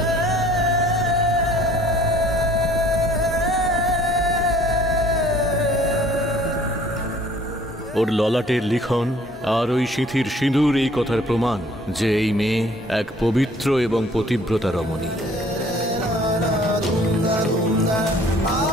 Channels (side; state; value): both; normal; correlation 0.55